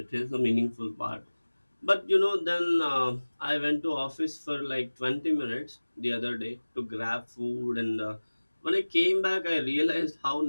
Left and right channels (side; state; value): both; inverted; correlation -1.00